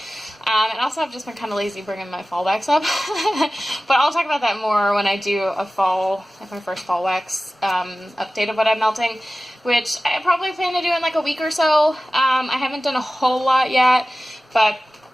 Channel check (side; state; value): both; normal; correlation 0.96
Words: And also I've just been kind of lazy bringing my fall wax up. But I'll talk about that more when I do a fall, like my first fall wax update of what I'm melting, which I probably plan to do in like a week or so. I haven't done a whole lot yet, but